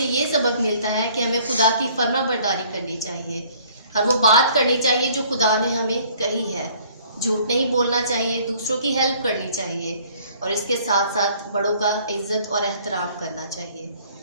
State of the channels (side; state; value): both; inverted; correlation -0.57